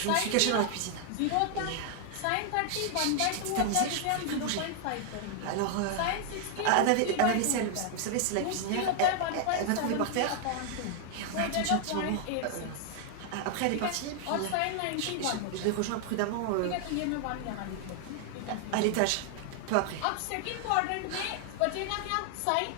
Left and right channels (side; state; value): both; different; correlation 0.00